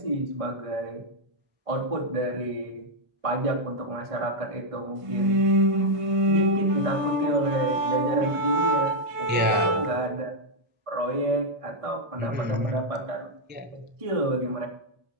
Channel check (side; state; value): left; late; 1.5 ms